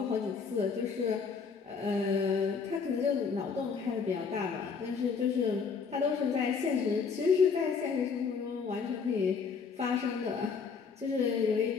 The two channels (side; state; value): right; quieter; 5.6 dB